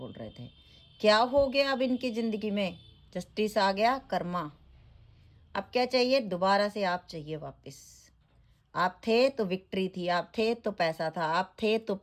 रहे थे। क्या हो गया अब इनकी ज़िंदगी में? जस्टिस आ गया, कर्मा। अब क्या चाहिए? दोबारा से आप चाहिए वापस। आप थे तो विक्ट्री थी, आप थे तो पैसा था, आप थे तो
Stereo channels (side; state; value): both; identical; correlation 1.00